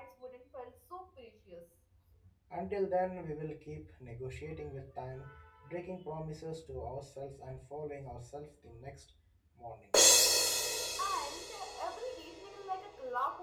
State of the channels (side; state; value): both; identical; correlation 1.00